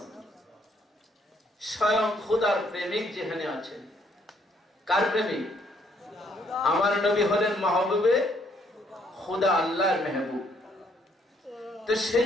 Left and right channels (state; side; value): normal; both; correlation 0.68